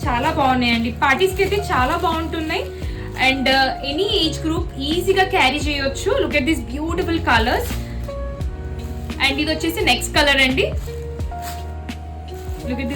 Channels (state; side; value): identical; both; correlation 1.00